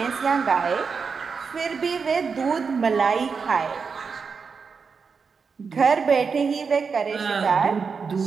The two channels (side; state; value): left; quieter; 5.4 dB